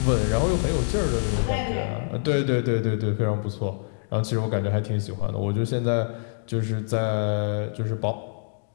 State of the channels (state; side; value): silent; right; digital silence